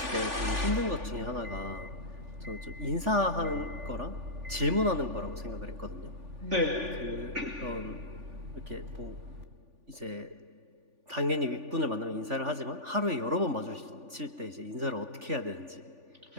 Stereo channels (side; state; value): left; late; 3.4 ms